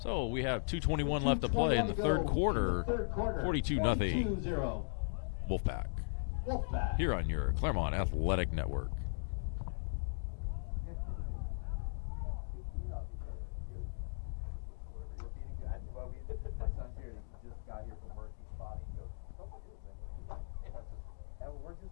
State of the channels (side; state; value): right; silent; digital silence